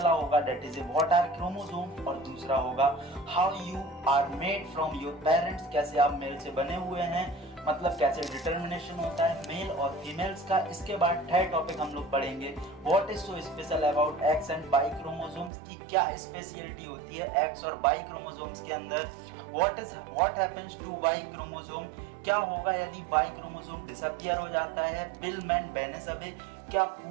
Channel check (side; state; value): left; drops out; at 15.5 s